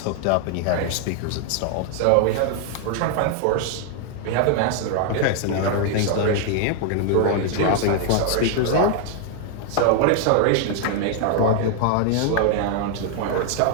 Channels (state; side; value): different; both; correlation 0.00